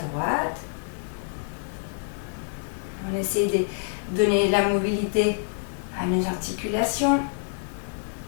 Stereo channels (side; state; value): right; silent; 60 dB below the other